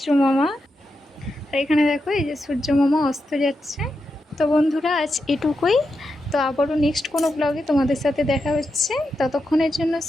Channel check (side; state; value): both; normal; correlation 0.87